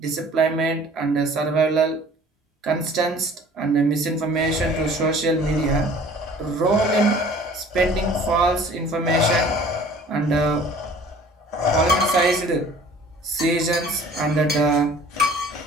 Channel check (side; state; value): both; normal; correlation 0.49